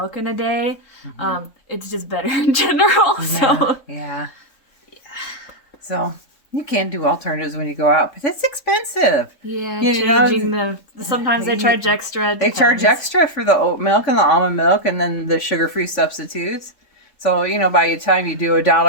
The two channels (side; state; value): right; late; 3.5 ms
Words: in a day. It's just better in general. Yeah. So you can do alternatives when you go out, but it's expensive. Yeah, changing sometimes they charge extra. They charge extra for the oat milk and the almond milk and then the sugar-free substitutes. So, you know, by the time you do